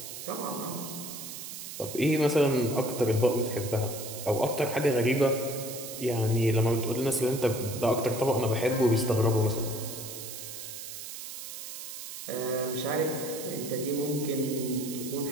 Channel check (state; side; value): noise; right; hiss, 9 dB below the sound